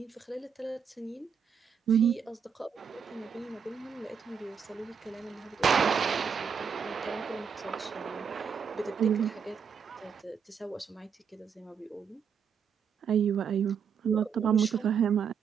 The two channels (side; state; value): left; quieter; 6.8 dB